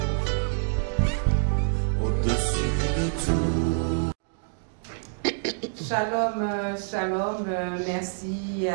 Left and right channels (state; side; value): silent; left; digital silence